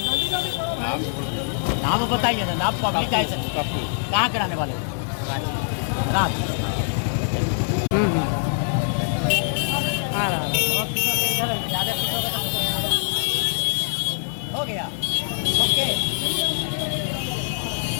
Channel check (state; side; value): silent; right; 57 dB below the other